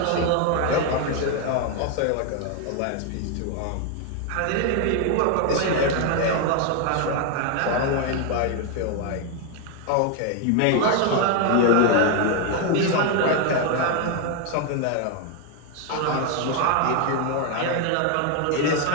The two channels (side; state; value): both; different; correlation 0.01